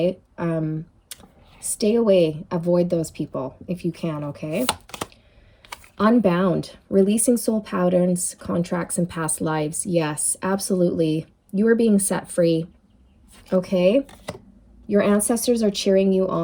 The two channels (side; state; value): both; identical; correlation 1.00